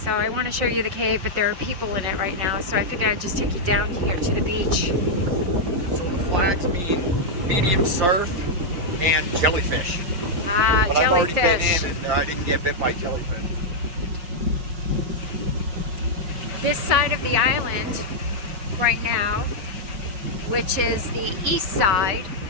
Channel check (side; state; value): left; late; 5.5 ms